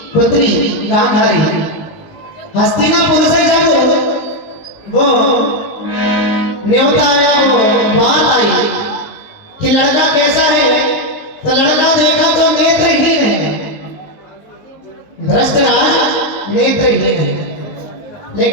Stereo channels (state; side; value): late; right; 19 ms